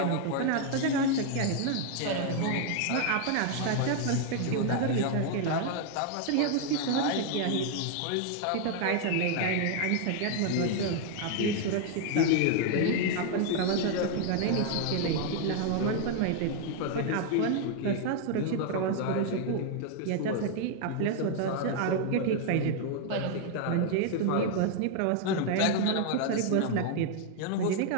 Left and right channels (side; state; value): both; different; correlation 0.00